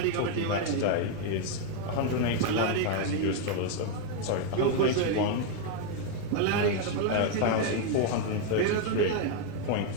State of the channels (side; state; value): both; different; correlation 0.01